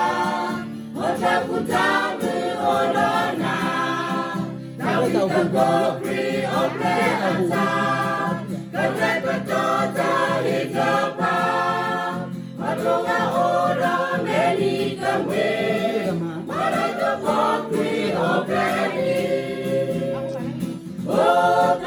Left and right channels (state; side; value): identical; both; correlation 1.00